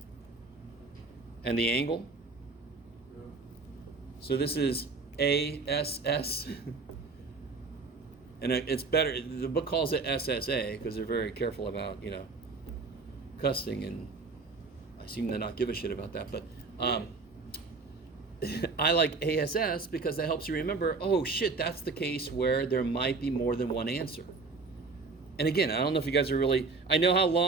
And the angle? Yeah. So this is ASS. And it's better, the book calls it SSA because they're very careful about, cussing, and I seem to not give a shit about that, but I like ASS because that helps you remember, oh shit, that's the case where there might be more than one answer. And again, I don't know if you guys are really, I know how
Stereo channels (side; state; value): left; quieter; 4.1 dB